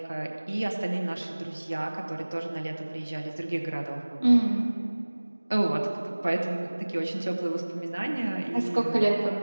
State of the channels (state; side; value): inverted; both; correlation -1.00